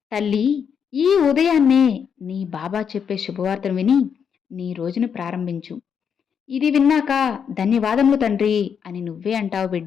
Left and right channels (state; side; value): quieter; right; 7.2 dB